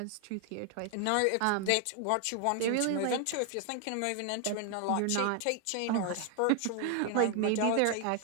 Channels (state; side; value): different; both; correlation 0.00